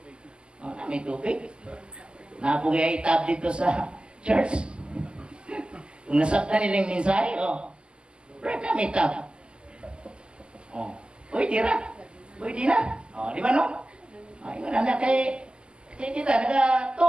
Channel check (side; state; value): left; late; 0.049 ms